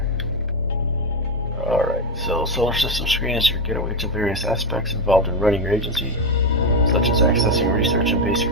Alright, so solar system screen is your getaway to various aspects involved in running your agency, such as accessing research and base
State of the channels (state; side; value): normal; both; correlation 0.09